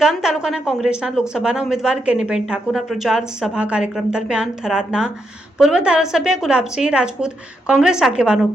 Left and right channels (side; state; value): both; normal; correlation 0.81